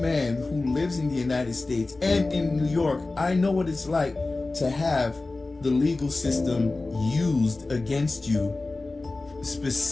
who lives in the United States and in New York, I know what it's like to have the legal system used against you,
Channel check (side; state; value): right; quieter; 3.3 dB